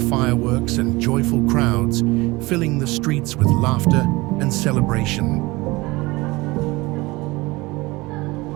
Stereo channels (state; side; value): quieter; left; 22.1 dB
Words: fireworks, and joyful crowds, filling the streets with laughter and celebration.